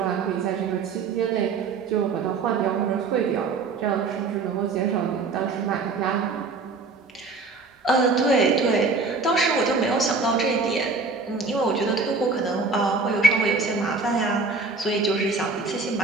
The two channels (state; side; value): quieter; left; 4.2 dB